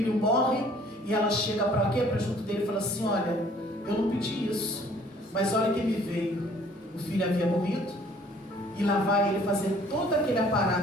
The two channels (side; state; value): both; normal; correlation 0.56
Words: morre, e ela chega para quê? Para junto dele e fala assim: olha, eu não pedi isso, mas olha quem me veio. O filho havia morrido, e lá vai ele fazer todo aquele